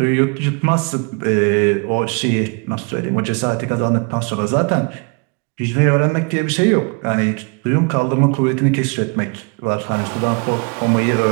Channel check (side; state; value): left; quieter; 33.9 dB